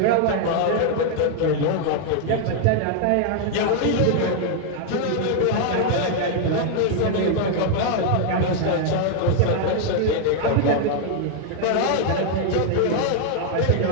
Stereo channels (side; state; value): both; different; correlation 0.00